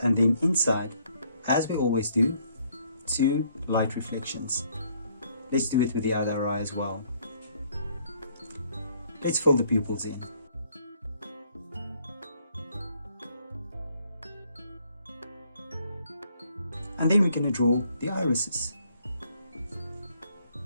and then inside, as we always do, two light reflections. Let's do it with the other eye as well. Let's fill the pupils in. And then we're going to draw the irises.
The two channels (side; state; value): both; inverted; correlation -0.67